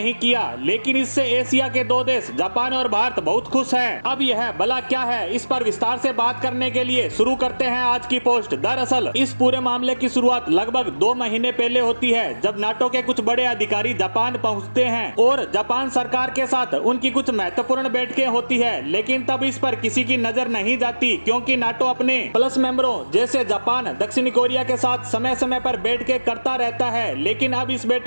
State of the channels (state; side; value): inverted; both; correlation -1.00